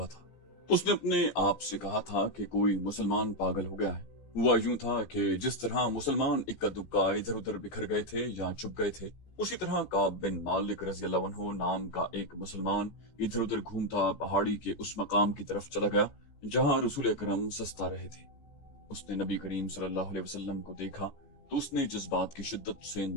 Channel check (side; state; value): right; late; 14 ms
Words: تھا۔ اس نے اپنے آپ سے کہا تھا کہ کوئی مسلمان پاگل ہو گیا ہے۔ ہوا یوں تھا کہ جس طرح مسلمان اکا دکا ادھر ادھر بکھر گئے تھے یا چھپ گئے تھے، اسی طرح کعب بن مالک رضی اللہ عنہ نام کا ایک مسلمان ادھر ادھر گھومتا پہاڑی کے اس مقام کی طرف چلا گیا جہاں رسول اکرم سستا رہے تھے۔ اس نے نبی کریم صلی اللہ علیہ وسلم کو دیکھا تو اس نے جذبات کی شدت سے